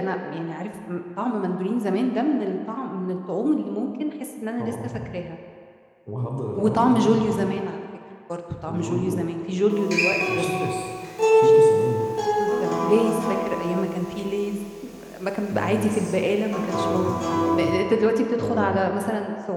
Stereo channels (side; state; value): both; identical; correlation 1.00